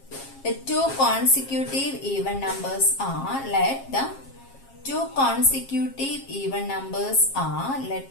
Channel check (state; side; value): late; right; 7.4 ms